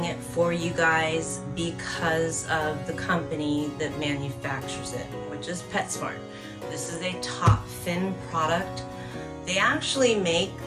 it for you guys because of the company that manufactures it, which is PetSmart. This is a top fin product. They actually make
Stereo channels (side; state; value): both; identical; correlation 1.00